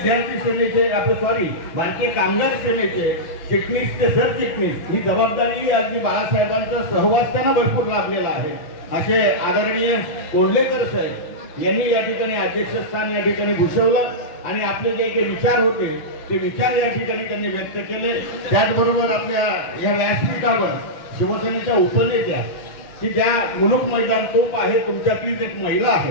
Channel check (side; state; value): right; late; 6.0 ms